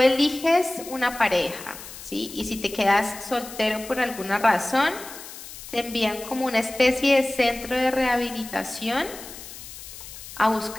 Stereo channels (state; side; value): noise; left; hiss, 14 dB below the sound